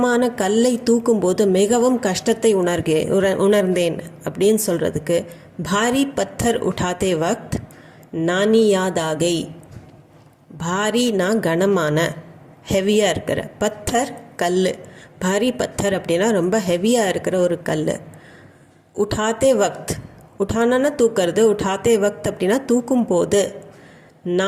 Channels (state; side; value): identical; both; correlation 1.00